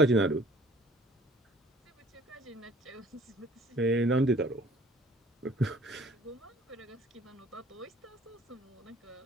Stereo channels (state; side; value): normal; both; correlation 0.53